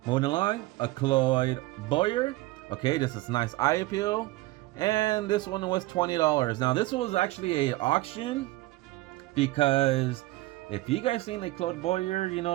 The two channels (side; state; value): left; quieter; 19.2 dB